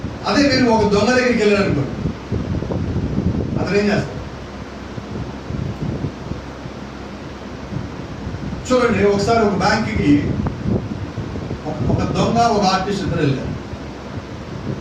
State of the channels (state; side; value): identical; both; correlation 1.00